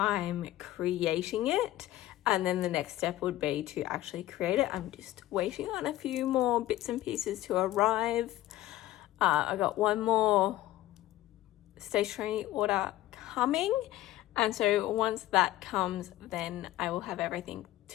creating it. And then the next step would be to actually create it. I'm just waiting on a few more bits and pieces to arrive. I got one more stationery order coming. And so once that comes, then I will have everything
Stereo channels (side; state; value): right; quieter; 15.4 dB